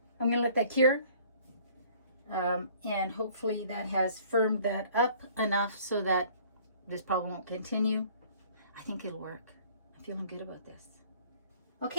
I'm going to let that cure, and hopefully that has firmed that up enough so that this problem won't continue. I think it'll work. I'm feeling good about this.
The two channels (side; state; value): both; inverted; correlation -0.54